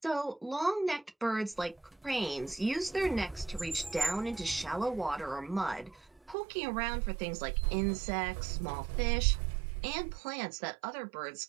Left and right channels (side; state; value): left; drops out; at 6.4 s